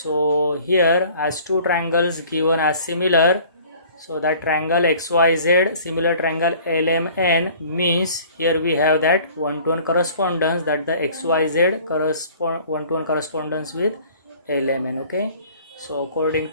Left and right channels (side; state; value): both; inverted; correlation -0.50